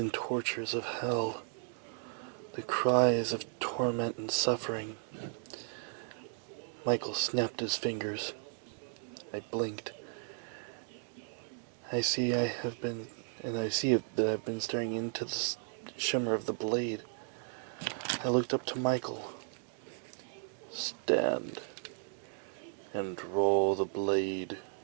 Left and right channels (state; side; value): silent; left; 54 dB below the other